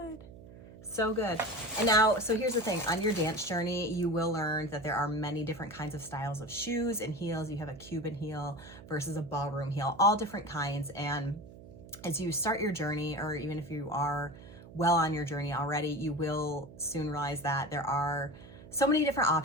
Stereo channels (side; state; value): right; noise; hum, 18 dB below the sound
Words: So good. And now, so here's the thing, on your dance journey, you will learn that there are many different kinds of styles of shoes and heels. You have a Cuban heel versus a ballroom heel, all different kinds. And as you start your journey, or even if you are well on your journey already, you will soon realize that there are so many different